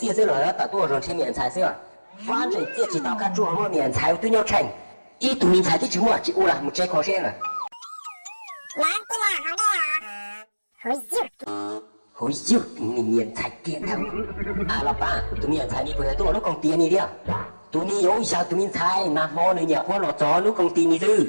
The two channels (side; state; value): both; inverted; correlation -1.00